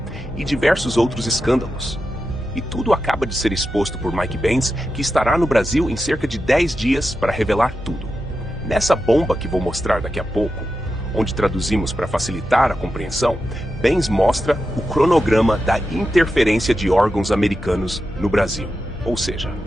e diversos outros escândalos. E tudo acaba de ser exposto por Mike Benz, que estará no Brasil em cerca de 10 dias para revelar tudo. Nessa bomba que vou mostrar daqui a pouco, onde traduzimos para facilitar a compreensão, Benz mostra o cronograma da interferência de órgãos americanos no Brasil. Ou seja,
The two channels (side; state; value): both; normal; correlation 0.90